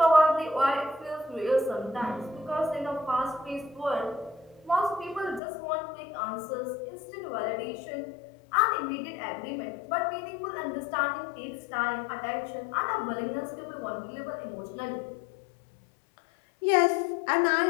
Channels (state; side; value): drops out; right; at 5.4 s